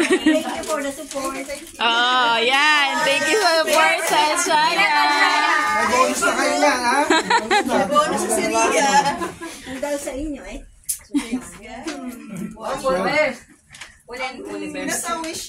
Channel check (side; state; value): both; identical; correlation 1.00